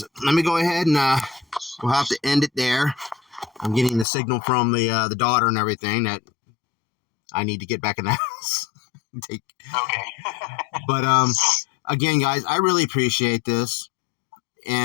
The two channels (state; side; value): drops out; right; at 4.0 s